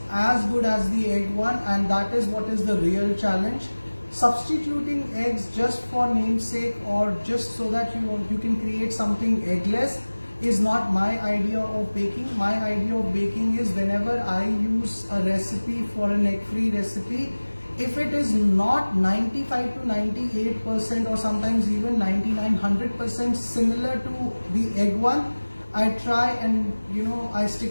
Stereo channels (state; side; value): inverted; both; correlation -1.00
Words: as good as the egg one, and that is what is the real challenge. Substituting eggs just for namesake or just so that you can create something eggless is not my idea of baking. My idea of baking is whenever I use a recipe for an egg-free recipe, if it is not 95 to 98% or sometimes even 99-100% similar to the egg one, I try and I